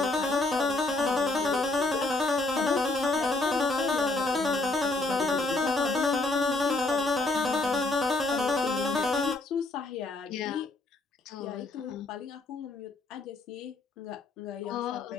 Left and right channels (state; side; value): quieter; right; 3.1 dB